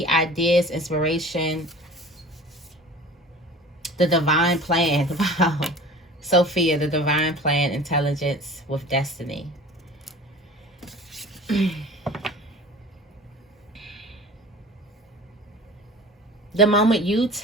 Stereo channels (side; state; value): both; normal; correlation 0.42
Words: ideas, inspiration, the divine plan. Wow. Sophia, the divine plan, intelligence with destiny. The moment you